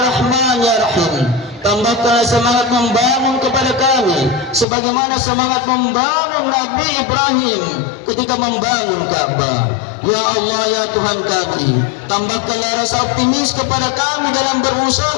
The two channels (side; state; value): right; drops out; at 4.7 s